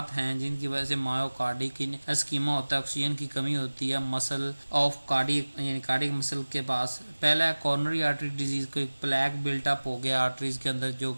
हैं जिनकी वजह से मायोकार्डिक एस्कीमा होता है, ऑक्सीजन की कमी होती है मसल ऑफ कार्डिक, यानी कार्डिक मसल के पास। पहला है कॉर्नरी आर्टरी डिजीज, कोई प्लैक बिल्टअप हो गया आर्टरीज के अंदर जो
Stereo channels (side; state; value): both; inverted; correlation -1.00